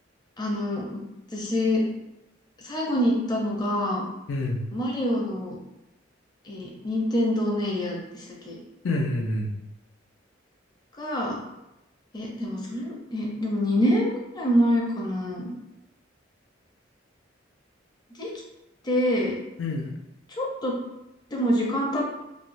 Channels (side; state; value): both; normal; correlation 0.65